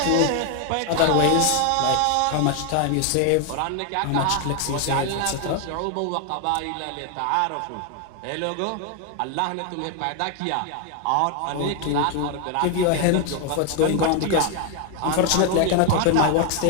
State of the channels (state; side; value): different; both; correlation 0.01